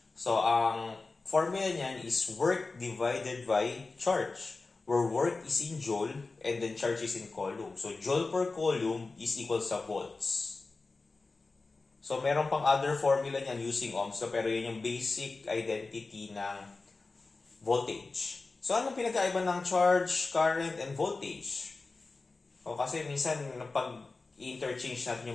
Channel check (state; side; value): quieter; right; 3.8 dB